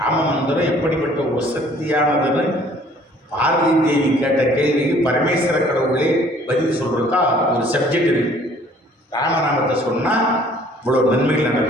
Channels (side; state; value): both; normal; correlation 0.56